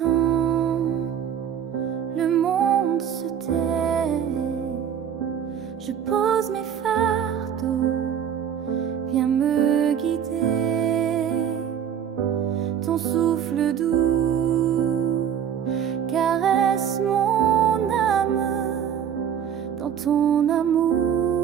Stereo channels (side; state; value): left; quieter; 8.8 dB